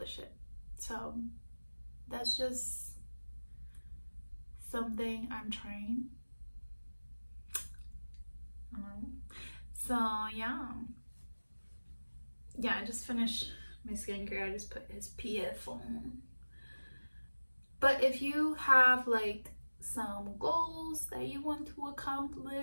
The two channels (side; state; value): both; inverted; correlation -1.00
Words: it. So that's just something I'm trying. So yeah, I just finished my skincare. I just put SPF on. But if you have like some goals that you want to